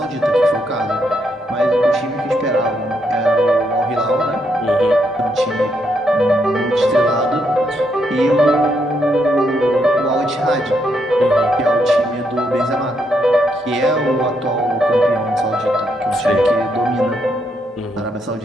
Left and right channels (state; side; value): normal; both; correlation 0.77